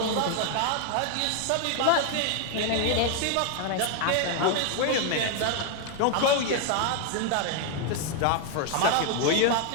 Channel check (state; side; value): different; both; correlation 0.00